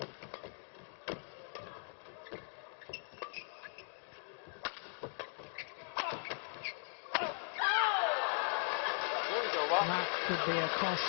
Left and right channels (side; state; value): right; silent; 52 dB below the other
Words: could be a